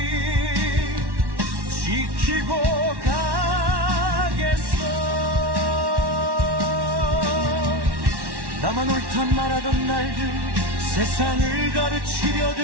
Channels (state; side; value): late; left; 1.1 ms